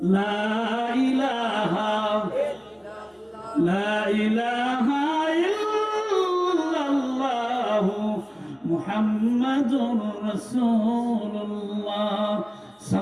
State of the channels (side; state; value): both; identical; correlation 1.00